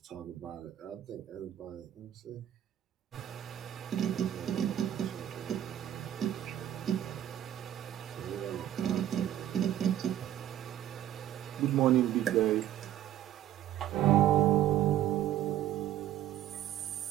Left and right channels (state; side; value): quieter; left; 11.8 dB